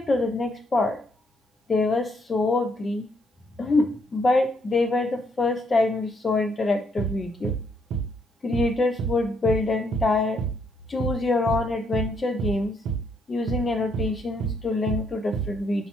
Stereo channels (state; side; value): normal; both; correlation 0.72